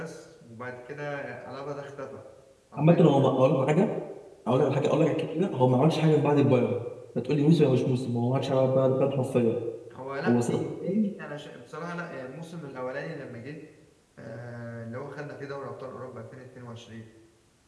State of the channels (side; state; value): both; identical; correlation 1.00